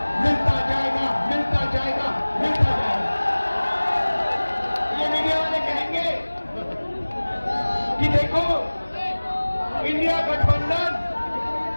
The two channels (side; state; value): both; inverted; correlation -1.00